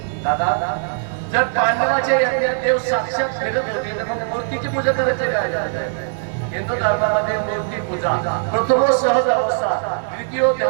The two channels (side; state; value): left; silent; 66 dB below the other